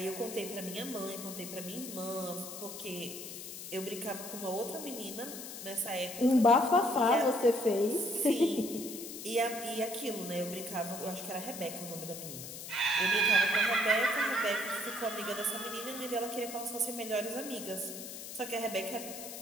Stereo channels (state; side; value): noise; left; hiss, 10 dB below the sound